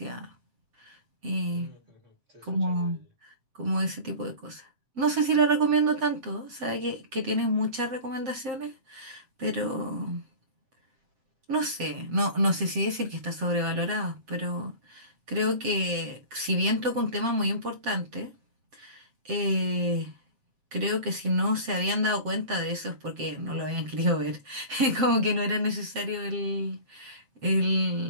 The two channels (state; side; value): late; left; 7.6 ms